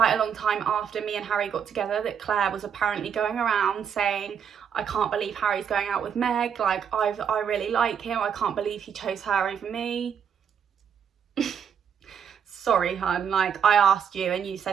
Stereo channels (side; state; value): left; quieter; 7.7 dB